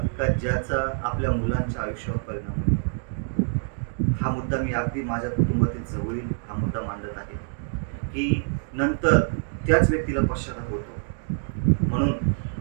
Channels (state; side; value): silent; left; digital silence